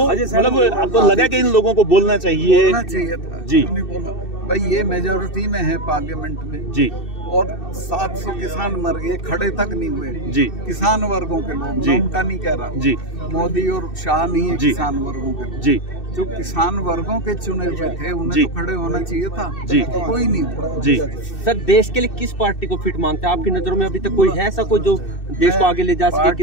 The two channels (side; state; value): right; late; 2.6 ms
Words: मतलब आपको लगा कि इन लोगों को बोलना चाहिए था जी? नहीं बोला भाई, ये मेजोरिटी में है पार्लियामेंट में जी, और 700 किसान मर गए, खड़े तक नहीं हुए जी। किसान वर्गों के लोग, जी। मैं उनका नहीं कह रहा जी, मोदी और शाह नहीं है, जी। किसान वर्गों के लोग। जी, जो किसान वर्गों के चुने हुए थे उन्हें जी। तो खड़े होना चाहिए था, जी। कोई नहीं हुआ। जी। सर, देश के लिए किस पार्टी को फिट मानते हैं? आपकी नजरों में अभी तक कोई है ऐसा कोई जो देश को आगे ले जा सके, पार्टी